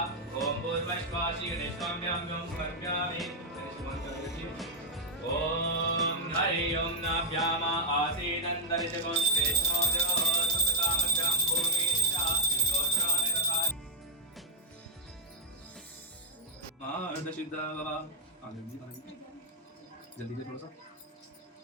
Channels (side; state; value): both; normal; correlation -0.01